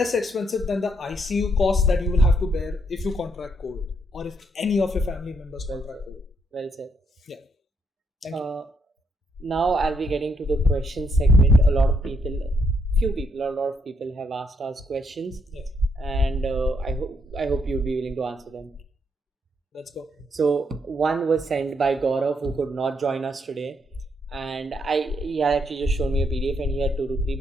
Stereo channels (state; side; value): normal; both; correlation 0.75